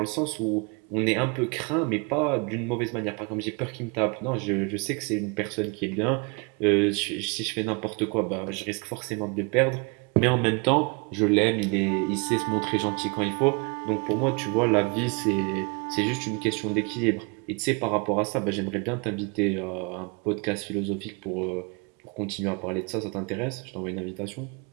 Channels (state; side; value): quieter; left; 31.7 dB